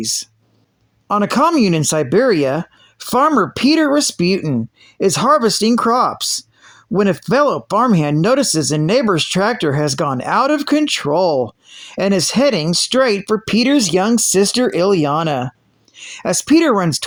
On a commune in Siberia, farmer Peter Rasputin is harvesting crops when a fellow farmhand notices a neighbor's tractor has gone out of control and is heading straight for Peter's young sister Ilyana. As Peter runs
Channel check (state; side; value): identical; both; correlation 1.00